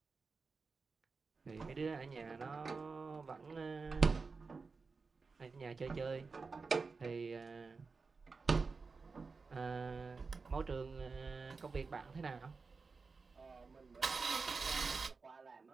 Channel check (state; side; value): quieter; left; 4.5 dB